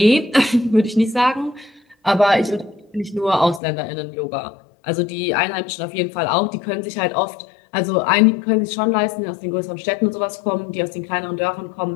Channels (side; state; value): right; drops out; at 3.6 s